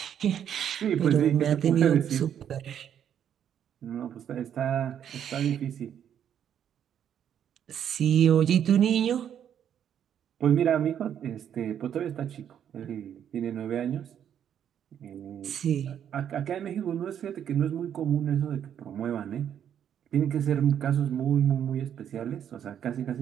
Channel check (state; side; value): quieter; left; 9.3 dB